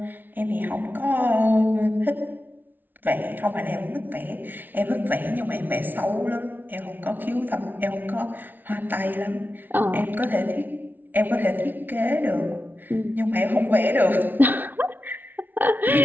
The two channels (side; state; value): left; late; 0.087 ms